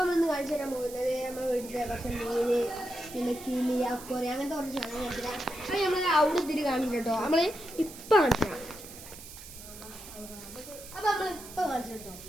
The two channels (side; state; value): right; noise; hiss, 15 dB below the sound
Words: കാണിച്ചു തരാൻ പോകുന്നത് നമ്മുടെ വീട്ടിലെ കുറച്ച് മീന്, പിന്നെ കിളി, അക്കോറി, അങ്ങനത്തെ കുറച്ച് സാധനം കാണിച്ചു തരാം. അപ്പോൾ നമ്മൾ അവിടെ ഇതിരി കാണിച്ചു കേട്ടോ. നമ്മൾ ഇപ്പം കാണിച്ചു തരാം. അപ്പോൾ നമ്മൾ ഇപ്പം കാണിച്ചു കേട്ടോ.